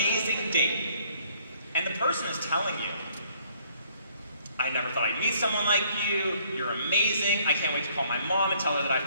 date and the person is telling you, I never thought I'd meet someone like you, you're amazing, I can't wait to call my mom and tell her that I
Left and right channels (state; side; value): inverted; both; correlation -0.64